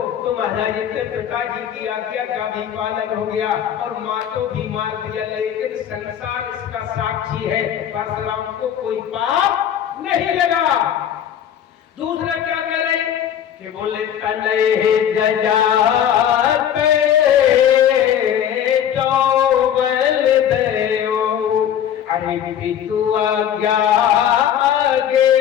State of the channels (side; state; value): right; quieter; 9.6 dB